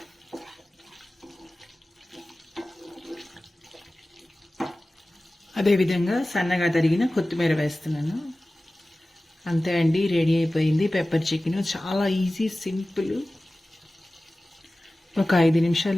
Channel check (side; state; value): both; normal; correlation 0.97